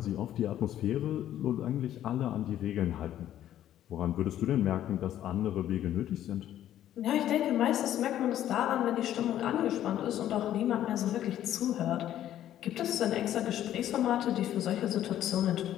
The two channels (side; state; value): right; quieter; 11.8 dB